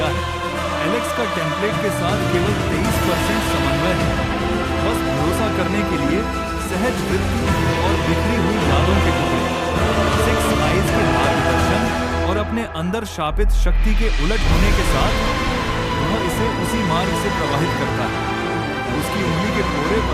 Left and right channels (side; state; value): both; identical; correlation 1.00